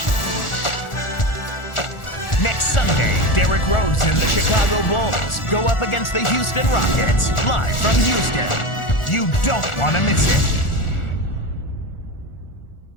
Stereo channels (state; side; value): late; right; 1.4 ms